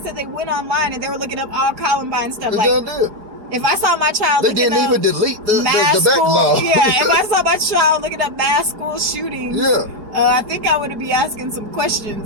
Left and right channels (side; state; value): left; late; 4.8 ms